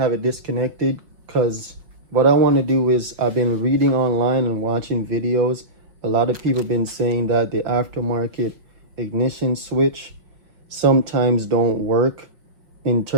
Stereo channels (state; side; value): late; left; 5.9 ms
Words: it disconnected because what I want to do is, I've been reading online and watching videos. A lot of people have been saying that the aftermarket ignition switch sometimes don't work, in